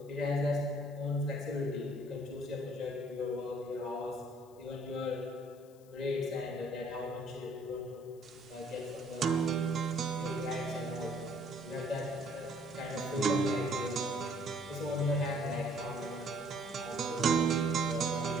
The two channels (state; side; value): noise; left; hiss, 28 dB below the sound